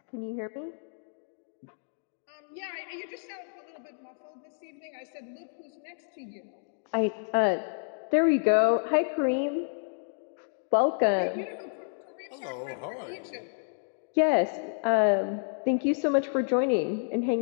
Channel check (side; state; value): right; silent; digital silence